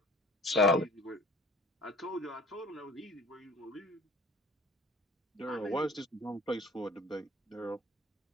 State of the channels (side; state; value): both; normal; correlation 0.47